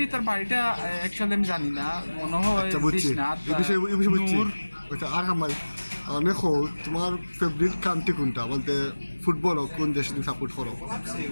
তার বাড়িটা অ্যাকচুয়ালি আমি জানি না, মনে হয় বিশ্বনাথ। দেখো, তোমার ফেভারিট কান্ট্রি কোনটা? বলতে ফুটবল কোন দেশ তুমি সাপোর্ট করো?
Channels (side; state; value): both; inverted; correlation -1.00